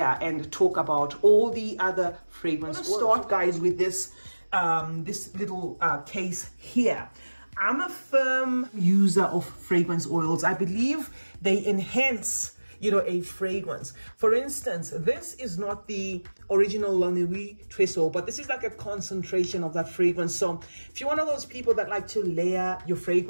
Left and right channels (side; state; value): both; inverted; correlation -1.00